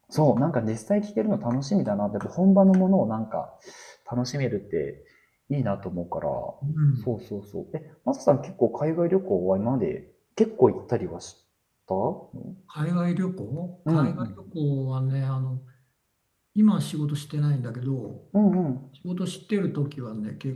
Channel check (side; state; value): both; identical; correlation 1.00